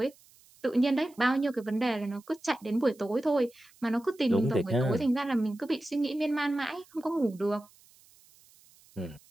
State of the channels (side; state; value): right; noise; hiss, 28 dB below the sound